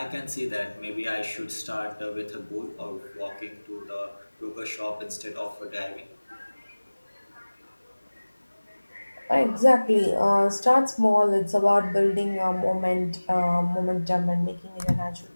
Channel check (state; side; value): inverted; both; correlation -1.00